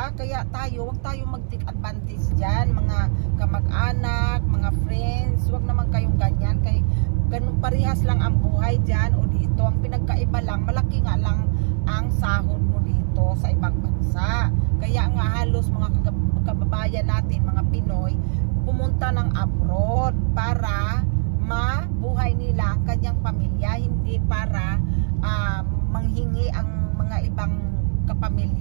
Kaya wag tayo mag-take advantage dyan, mga kamag-anak, mga friends, wag naman kayong ganyan, kay ganun parehas lang ang buhay dyan o dito. Ang pinagkaiba lang, malaki nga lang ang sahod mo dito sa ibang bansa. Kaya nga halos mga kababayan natin, mga Pinoy, pumunta ng abroad para mabuhay nila ang kanyang pamilya, hindi para manghingi ang mga ibang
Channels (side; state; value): left; silent; 61 dB below the other